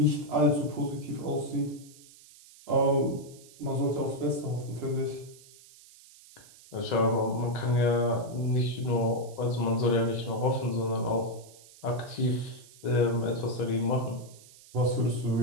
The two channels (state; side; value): noise; right; hiss, 22 dB below the sound